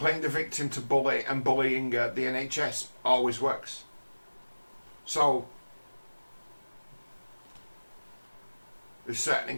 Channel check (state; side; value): inverted; both; correlation -1.00